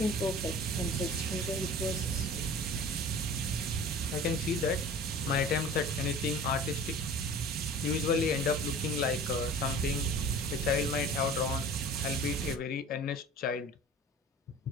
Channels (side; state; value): both; normal; correlation 0.41